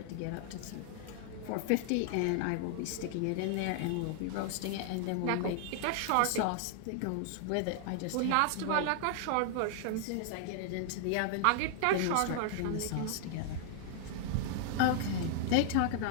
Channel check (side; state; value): both; different; correlation -0.01